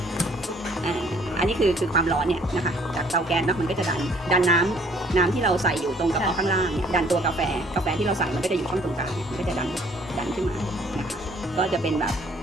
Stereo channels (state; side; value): normal; both; correlation 0.60